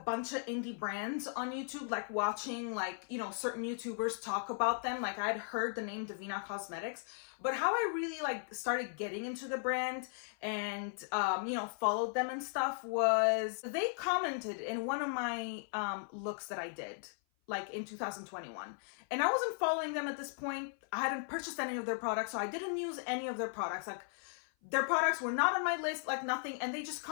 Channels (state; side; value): silent; right; 53 dB below the other